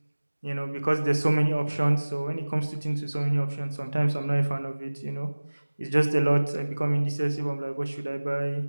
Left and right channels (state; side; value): inverted; both; correlation -1.00